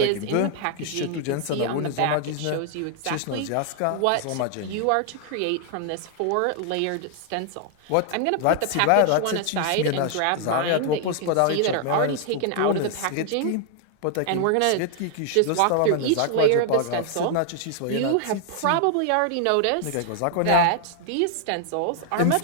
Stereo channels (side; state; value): both; different; correlation 0.00